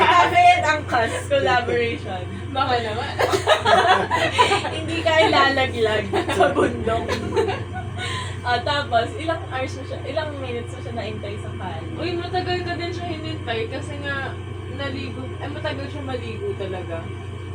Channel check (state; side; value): identical; both; correlation 1.00